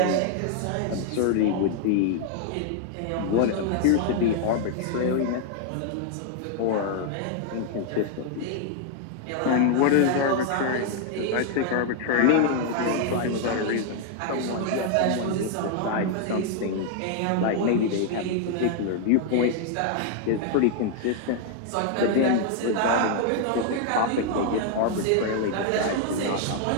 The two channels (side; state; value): both; different; correlation 0.00